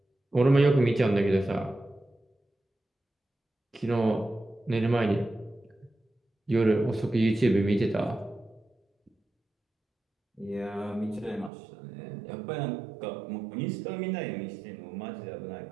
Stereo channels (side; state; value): left; drops out; at 11.5 s